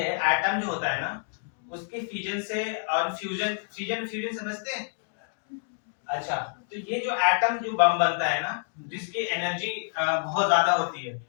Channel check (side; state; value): right; silent; digital silence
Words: एटम जो होता है ना उसके फ्यूजन से, और फ्यूजन फ्यूजन फ्यूजन समझते हैं? अच्छा, तो ये जो एटम जो बम बनता है ना, जिसकी एनर्जी बहुत ज्यादा होती है,